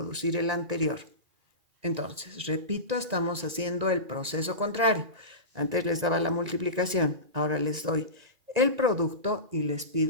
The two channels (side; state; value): left; late; 1.9 ms